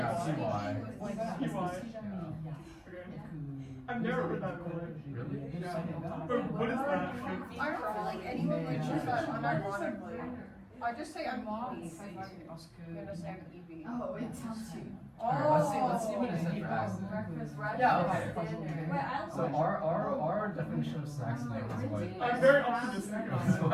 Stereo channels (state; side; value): identical; both; correlation 1.00